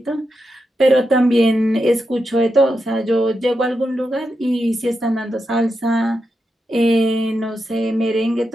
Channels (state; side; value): normal; both; correlation 0.87